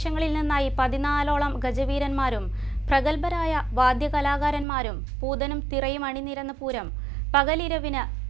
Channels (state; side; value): drops out; left; at 4.7 s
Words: നിന്നായി 14ഓളം ഗജവീരന്മാരും പ്രഗത്ഭരായ വാദ്യകലാകാരന്മാരും പൂതനും തിറയും അണിനിരന്ന പൂരം പകലിരവിന്